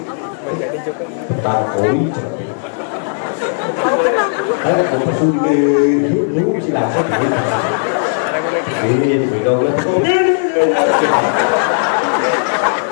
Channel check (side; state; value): right; silent; 69 dB below the other